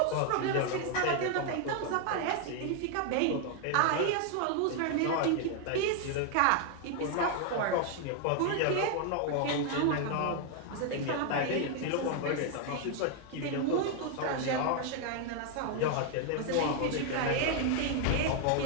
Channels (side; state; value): both; different; correlation 0.00